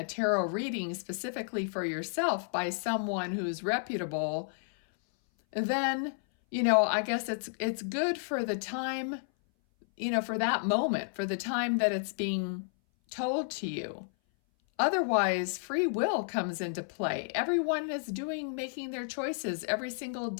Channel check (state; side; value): silent; right; 57 dB below the other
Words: tarot reading specifically for yourself by someone who's reputable, then, I guess it's good for the time, for that moment, for the time that it's being told to you. Otherwise, free will comes into play. Everyone is making their choices every single